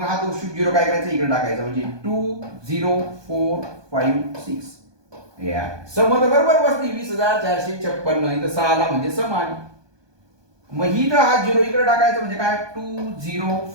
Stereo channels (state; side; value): late; left; 1.2 ms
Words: हा तो 0 काय करायचा इकडे टाकायचा, म्हणजे 2 0 4 5 6. या सम तर बरोबर बसली 20,456. इथं 6 ला म्हणजे सम आली. मग ही तर हा 0 इकडे टाकायचं, म्हणजे काय 2 0